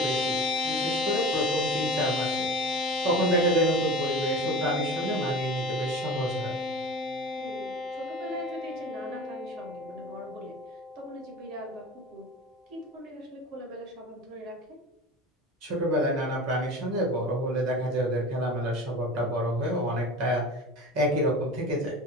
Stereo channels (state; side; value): normal; both; correlation 0.36